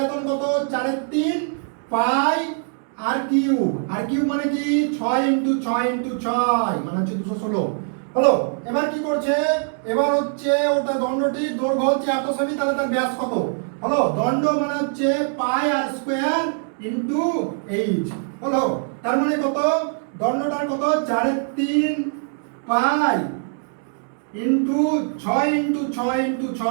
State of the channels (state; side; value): silent; left; 61 dB below the other